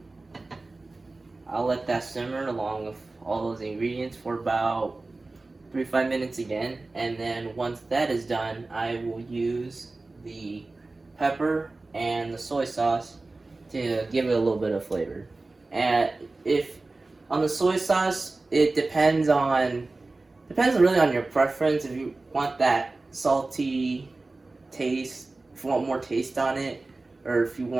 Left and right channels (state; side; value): quieter; left; 3.3 dB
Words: I'll let that simmer along with all those ingredients for about 3 to 5 minutes again, and then once that is done, I will use the pepper and the soy sauce to give it a little bit of flavor. And if on the soy sauce, it depends really on your preference. If you want that salty taste, if you want more taste on it, or if you